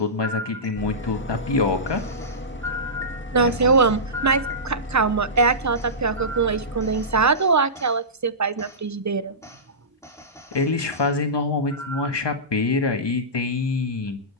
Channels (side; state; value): both; normal; correlation -0.19